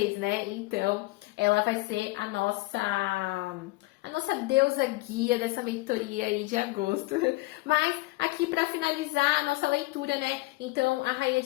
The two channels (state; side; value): quieter; right; 22.2 dB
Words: né? Então, ela vai ser a nossa deusa guia dessa mentoria aí de agosto. Mas aqui para finalizar a nossa leitura, né? Então, a Rainha